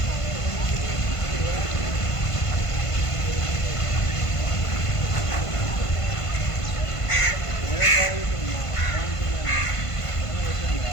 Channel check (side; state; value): right; late; 1.5 ms